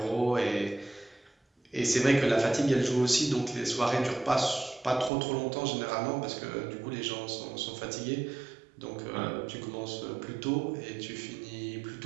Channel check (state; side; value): drops out; left; at 5.1 s